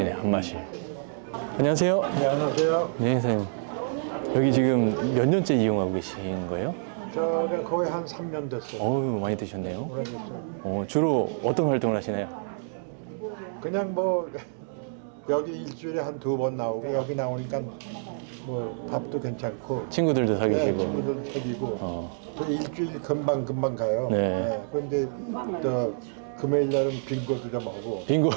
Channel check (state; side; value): silent; left; digital silence